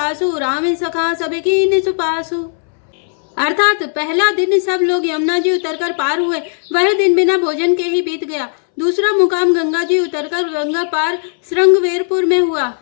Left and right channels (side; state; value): right; silent; 66 dB below the other